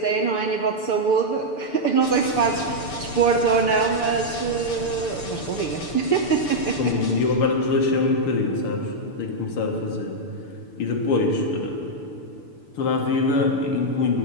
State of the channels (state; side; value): late; right; 6.8 ms